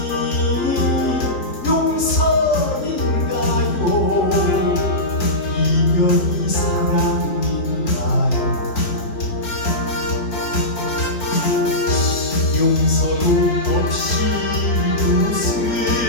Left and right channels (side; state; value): right; late; 4.4 ms